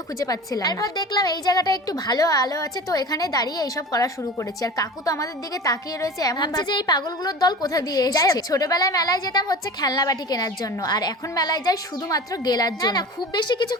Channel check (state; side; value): normal; both; correlation 0.35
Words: খুঁজে পাচ্ছিলাম না। তারপর দেখলাম এই জায়গাটা একটু ভালো আলো আছে, তো এখানে দাঁড়িয়ে এইসব করা শুরু করেছি। আর কাকু তো আমাদের দিকে তাকিয়ে রয়েছে, এমন ভাবছে যে এই পাগলগুলোর দল কোথা দিয়ে এসেছে। ছোটবেলায় মেলায় যেতাম হচ্ছে খেলনা বাটি কেনার জন্য, আর এখন মেলায় যাই শুধুমাত্র গেলার জন্য। না খুব বেশি কিছু